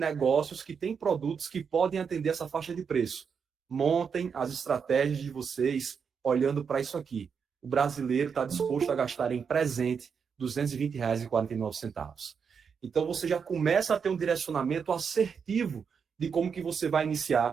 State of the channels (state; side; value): quieter; left; 6.4 dB